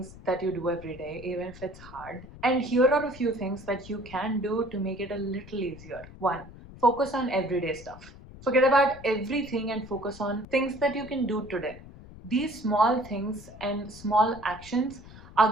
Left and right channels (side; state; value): left; noise; rumble, 17 dB below the sound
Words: that you do every day, even if it's hard. And here are a few things that you can do to make it a little easier. One, focus on everyday stuff. Forget about everything and focus on things that you can do today. These small things and small actions are